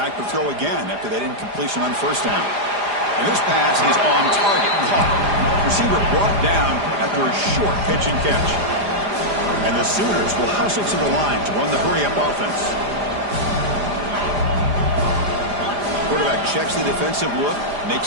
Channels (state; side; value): late; left; 4.9 ms